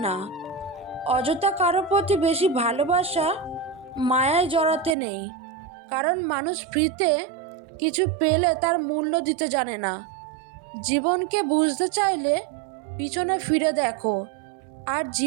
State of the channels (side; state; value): left; drops out; at 5.0 s